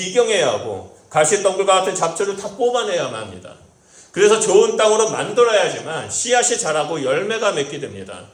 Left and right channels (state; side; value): identical; both; correlation 1.00